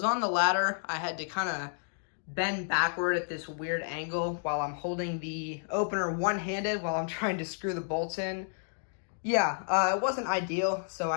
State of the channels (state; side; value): silent; right; digital silence